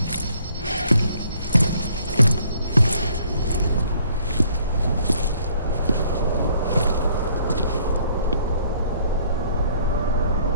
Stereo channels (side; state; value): both; inverted; correlation -0.62